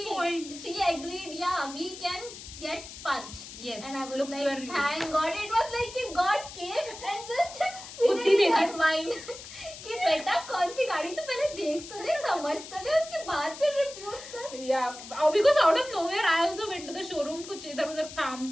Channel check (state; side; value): noise; left; hiss, 13 dB below the sound